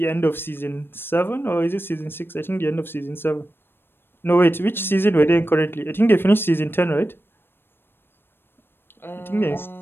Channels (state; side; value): late; right; 0.10 ms